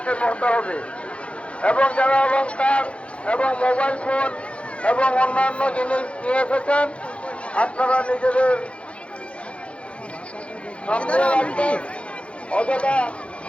হতে হবে। এবং যারা অলংকার এবং মোবাইল ফোন এবং অন্যান্য জিনিস নিয়ে এসেছেন আপনারা নিজেদের সামনে রাখবেন। অযথা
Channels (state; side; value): late; right; 0.061 ms